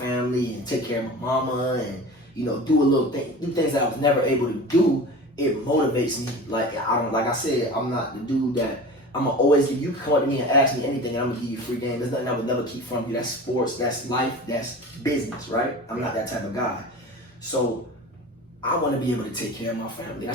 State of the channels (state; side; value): normal; both; correlation 0.35